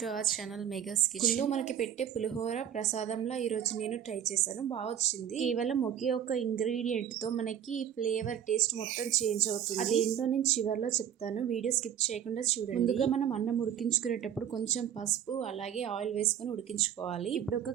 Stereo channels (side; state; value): left; quieter; 9.5 dB